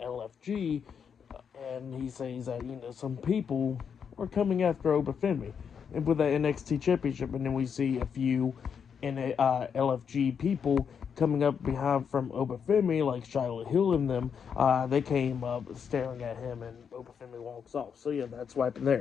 And he says that, some people are coming after Obafemi. And with the NXT Championship, and then we see a few LFG people coming up behind from Obafemi, like Shiloh Hill and them. They came up staring at him, and Obafemi walks off. So yeah, that's what happened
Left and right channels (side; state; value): right; quieter; 7.0 dB